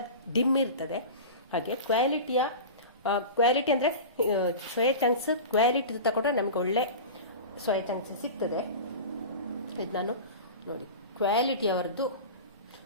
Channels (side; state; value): both; inverted; correlation -0.31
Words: ಡಿಮ್ ಇರ್ತದೆ. ಹಾಗೆ ಕ್ವಾಲಿಟಿ ಅಂದರೆ ಸೋಯಾ ಚಂಕ್ಸ್ ಕ್ವಾಲಿಟಿ ತಗೊಂಡ್ರೆ ನಮಗೆ ಒಳ್ಳೆ ಸೋಯಾ ಚಂಕ್ಸ್ ಸಿಗ್ತದೆ. ಇದು ನಾನು ನೋಡಿ ಕ್ವಾಲಿಟಿಯವರದ್ದು